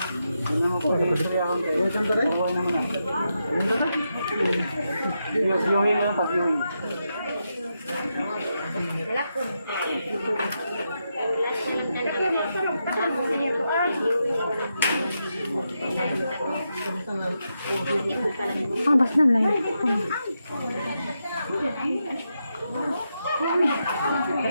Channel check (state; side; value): inverted; both; correlation -0.85